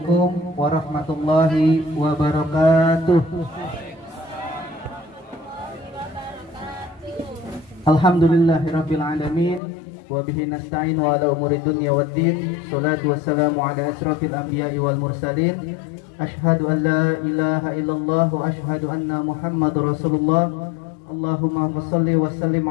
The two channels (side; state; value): right; drops out; at 9.6 s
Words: warahmatullahi wabarakatuh. Alhamdulillahirabbil alamin wa bihi nasta'in wa ala umuri dunya waddin. Shalatu wassalamu ala asrofil anbiya'i wal mursalin. Asyhadu an la ilaha illallah wa asyhadu anna Muhammadar Rasulullah. Allahumma shalli wa sallim